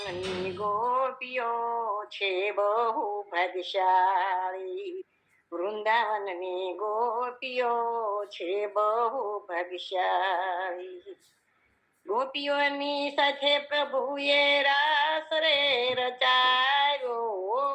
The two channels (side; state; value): both; identical; correlation 1.00